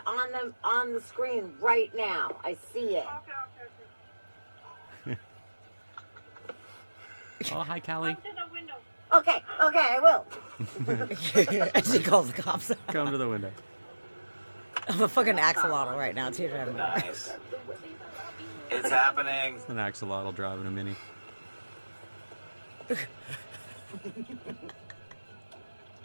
on the screen right now. I see it. Okay. Oh, hi, Callie. Come to the window. Okay, I will. She calls the cops. Come to the window. I'm a fucking axolotl right now, too. Nice. It's happening. An axolotl driving a mini.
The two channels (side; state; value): both; inverted; correlation -1.00